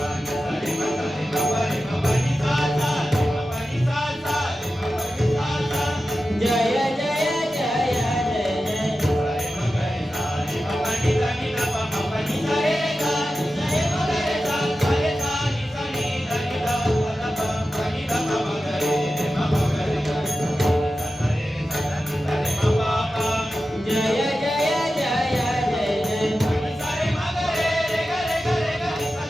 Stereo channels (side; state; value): both; normal; correlation 0.93